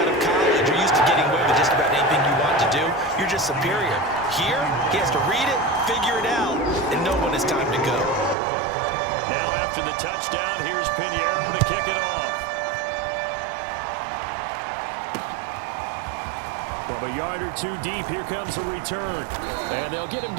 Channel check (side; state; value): left; drops out; at 8.3 s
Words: of college. You're used to getting away with just about anything you want to do. You're just superior. Here, he has to read it, figure it out, and know when it's time to go. Now after the touchdown, here's Pinheiro to kick it off. From a yard or 2 deep, here comes a return. And they'll get him